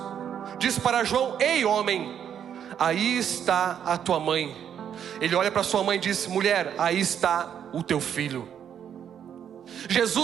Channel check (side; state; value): left; quieter; 8.9 dB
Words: diz para João: ei homem, aí está a tua mãe. Ele olha para sua mãe e diz: mulher, aí está o teu filho.